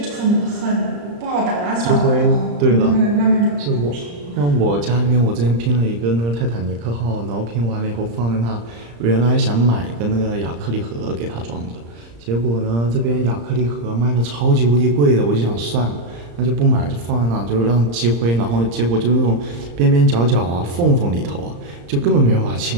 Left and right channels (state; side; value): late; left; 35 ms